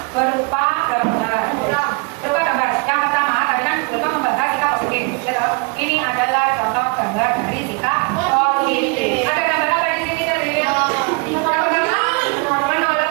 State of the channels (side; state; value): left; quieter; 30.8 dB